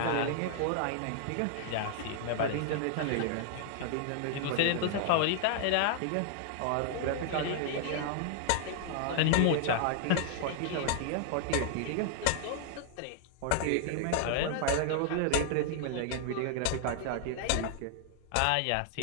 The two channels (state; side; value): different; both; correlation 0.00